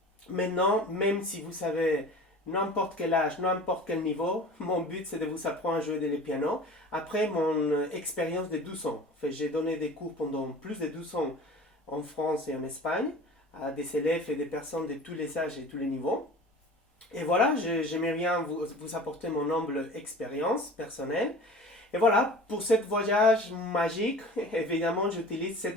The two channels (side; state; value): both; normal; correlation 0.40